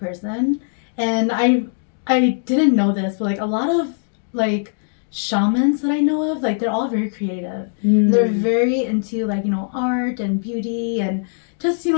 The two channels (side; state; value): right; silent; digital silence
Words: and I didn't know this, but like a lot of like shamans that I know of, like they're all very creative. They're very into like, art and beauty and just,